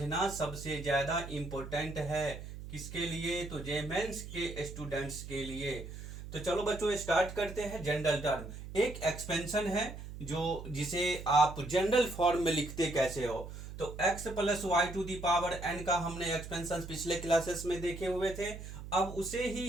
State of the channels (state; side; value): noise; right; hum, 11 dB below the sound